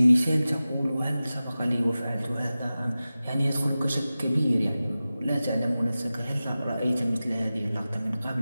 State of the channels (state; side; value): inverted; both; correlation -0.95